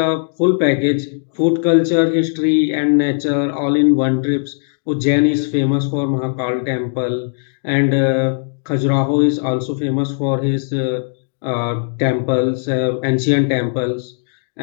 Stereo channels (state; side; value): silent; right; digital silence